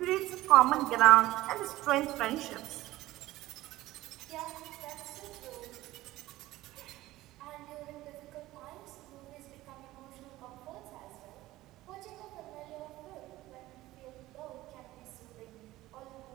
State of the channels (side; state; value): left; quieter; 16.9 dB